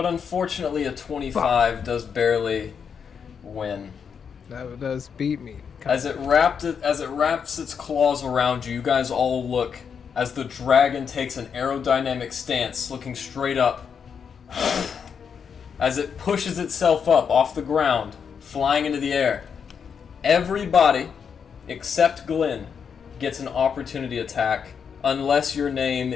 unfortunately, a 25 does barely win. That does beat me. As it wraps its claws around you, you guys all look as the dragon takes an aerodynamic stance, looking straight up. As it pushes itself up off the ground, flying into the air. Everybody, except Glen, gets an opportunity attack, unless your name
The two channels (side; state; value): right; quieter; 6.8 dB